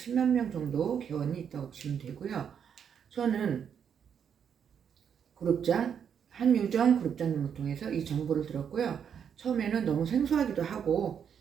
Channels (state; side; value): quieter; left; 7.8 dB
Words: 명 정도 개원이 있다고 보시면 되고요. 저는 그룹장 한유정 그룹장님을 통해서 이 정보를 들었고요. 처음에는 너무 생소하기도 하고